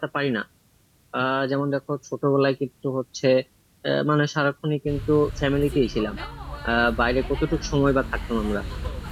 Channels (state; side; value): identical; both; correlation 1.00